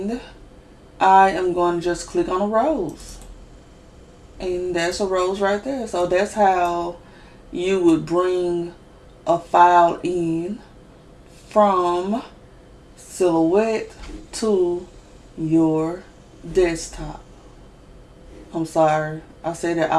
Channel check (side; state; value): both; identical; correlation 1.00